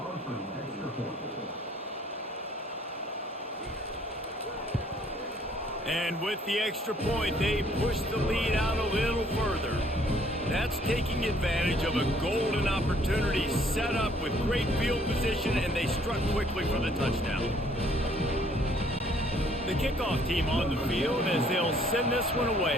And with the extra point, they push the lead out a little further. That's taking advantage of a golden opportunity set up with great field position, and they struck quickly for the touchdown. The kickoff team on the field as they'll send this one away.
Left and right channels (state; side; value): normal; both; correlation 0.62